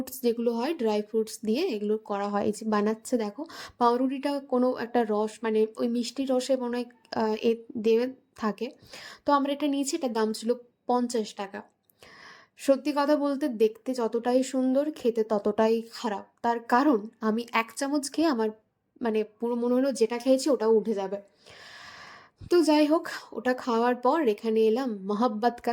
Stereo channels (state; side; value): identical; both; correlation 1.00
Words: যেগুলো হয় ড্রাই ফ্রুটস দিয়ে এগুলো করা হয়। এই যে বানাচ্ছে দেখো, পাউরুটিটা কোনো একটা রস, মানে ওই মিষ্টি রসে মনে হয় এ দেবে থাকে। তো আমরা এটা নিয়েছি, এটার দাম ছিল 50 টাকা। সত্যি কথা বলতে দেখতে যতটাই সুন্দর খেতে ততটাই খারাপ, তার কারণ আমি 1 চামচ খেয়ে আমার মানে পুরো মনে হলো যেটা খেয়েছি ওটাও উঠে যাবে। তো যাই হোক, ওটা খাওয়ার পর এখানে এলাম মহাব্বত কা